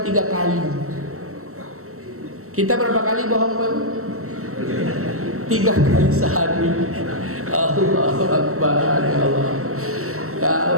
3 kali. Kita berapa kali bohong Bapak Ibu? 3 kali sehari. Allahu Akbar, ya Allah.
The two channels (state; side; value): late; left; 0.63 ms